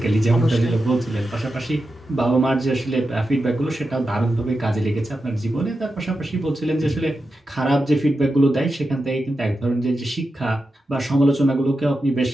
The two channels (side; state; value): both; normal; correlation 0.90